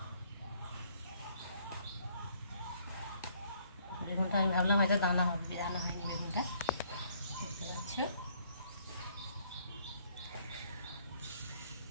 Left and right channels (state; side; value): inverted; both; correlation -0.65